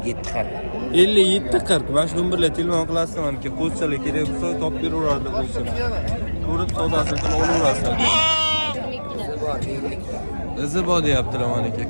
40. 57 40. Mana shu nomerlarga telefon qilasizlar, maniki qo'zichalar kerak bo'lsa topib beraveradi qo'zichalar. Ko'rib savdosini qilib olaverasizlar. Izi bor deyaptilar maniki.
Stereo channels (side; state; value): both; inverted; correlation -1.00